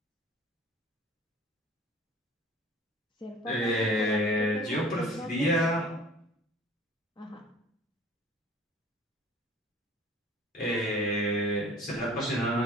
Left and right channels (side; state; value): both; normal; correlation 0.47